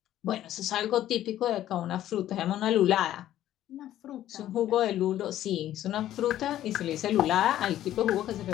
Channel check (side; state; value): right; quieter; 12.7 dB